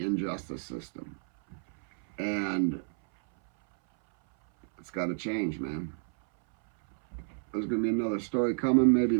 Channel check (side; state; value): left; silent; 58 dB below the other